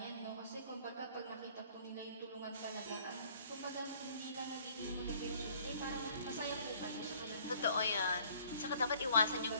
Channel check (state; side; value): inverted; both; correlation -0.57